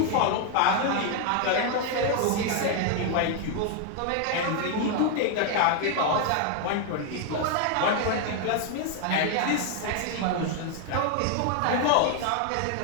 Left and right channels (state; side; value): different; both; correlation 0.01